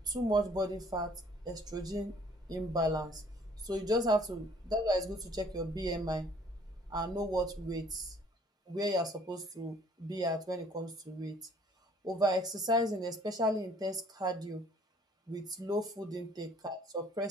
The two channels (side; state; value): both; normal; correlation 0.58